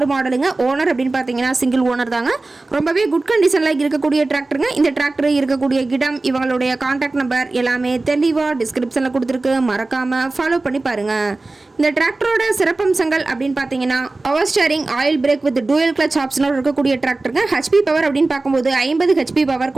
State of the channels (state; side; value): quieter; left; 3.3 dB